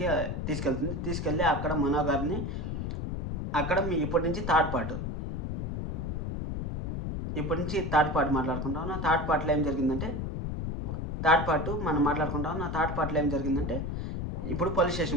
తీసుకెళ్ళి అక్కడ మనో గారిని అక్కడ ఇప్పటి నుంచి థర్డ్ పార్ట్ మాట్లాడుకుంటాం. థర్డ్ పార్ట్లో ఏం జరిగిందంటే ఇప్పుడు పోలీస్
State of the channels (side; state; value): left; noise; rumble, 3 dB below the sound